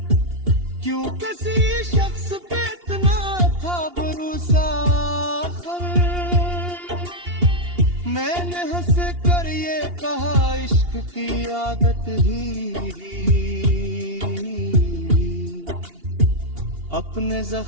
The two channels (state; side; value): late; left; 2.8 ms